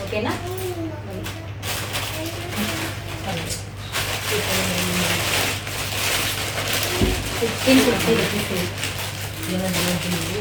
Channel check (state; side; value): identical; both; correlation 1.00